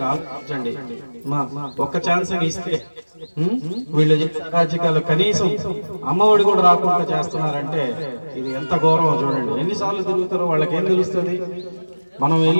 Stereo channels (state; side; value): inverted; both; correlation -1.00